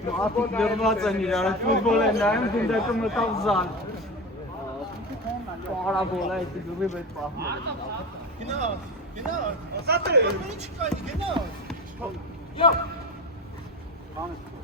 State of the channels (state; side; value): normal; both; correlation 0.26